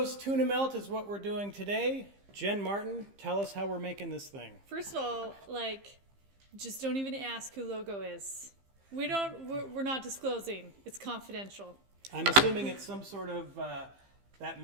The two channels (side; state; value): left; late; 15 ms